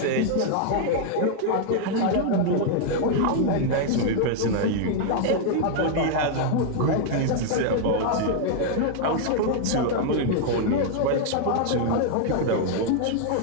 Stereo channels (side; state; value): both; different; correlation 0.00